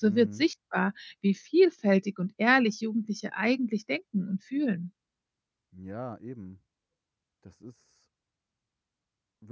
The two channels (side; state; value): both; identical; correlation 1.00